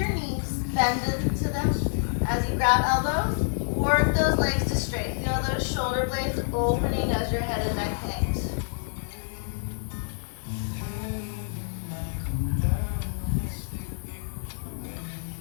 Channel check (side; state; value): right; silent; digital silence